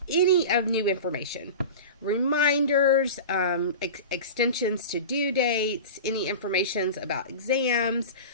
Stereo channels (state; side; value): inverted; both; correlation -0.31